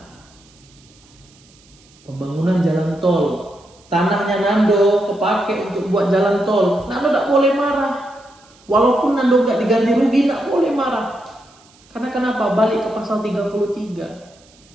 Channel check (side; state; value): right; noise; hiss, 29 dB below the sound